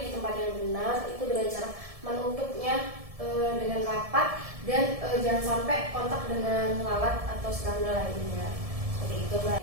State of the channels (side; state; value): left; late; 1.7 ms